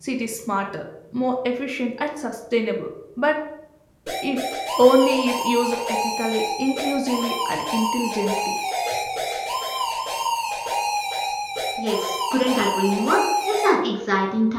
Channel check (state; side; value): identical; both; correlation 1.00